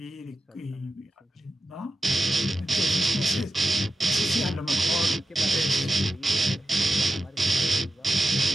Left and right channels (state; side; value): normal; both; correlation 0.92